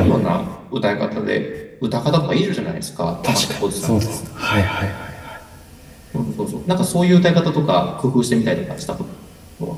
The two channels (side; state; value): both; identical; correlation 1.00